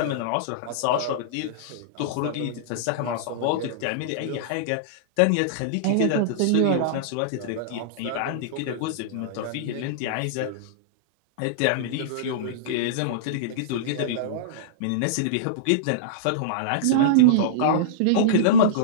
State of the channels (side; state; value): both; different; correlation -0.03